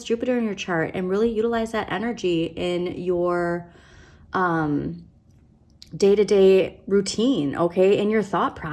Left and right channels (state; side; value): identical; both; correlation 1.00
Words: Jupiter in your chart and really utilize that energy in your day-to-day routine, okay, in your thought